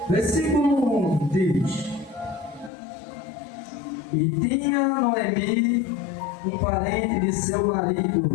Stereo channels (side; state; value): right; drops out; at 2.7 s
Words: Versículo 1 diz: E tinha Noemi um parente de seu